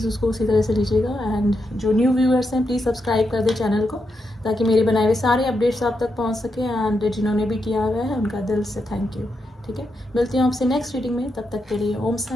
उसको उसी तरह से लीजिएगा। एंड जो न्यू व्यूअर्स हैं प्लीज़ सब्सक्राइब कर दें चैनल को, ताकि मेरे बनाए हुए सारे अपडेट्स आप तक पहुंच सके। एंड जिन्होंने भी किया हुआ है उनका दिल से थैंक यू। ठीक है, मिलती हूँ आपसे नेक्स्ट रीडिंग में, तब तक के लिए ओम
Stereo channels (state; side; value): normal; both; correlation 0.84